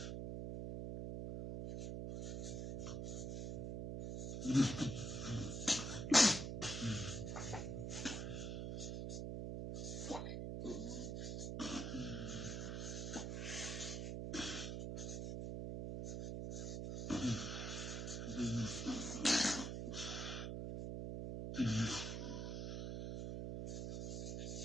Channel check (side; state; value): right; noise; hum, 2 dB below the sound